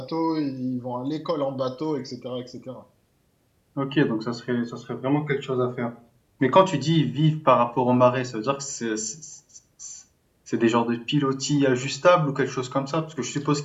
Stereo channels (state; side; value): identical; both; correlation 1.00